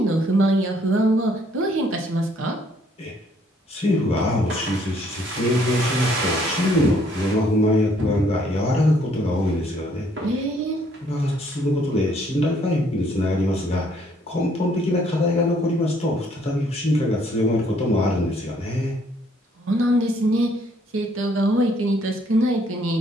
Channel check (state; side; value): normal; both; correlation 0.65